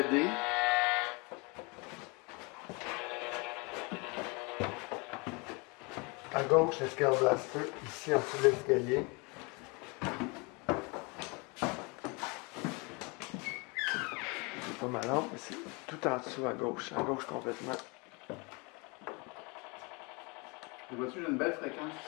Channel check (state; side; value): quieter; right; 29.2 dB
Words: À gauche, le Scale Blaster, ici en dessous de l'escalier. C'est pas malin, mais c'est tout en dessous à gauche complètement. Tu vois-tu, j'ai une belle fréquence